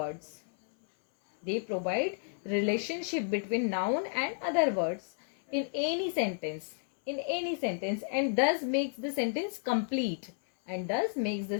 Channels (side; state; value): right; silent; 56 dB below the other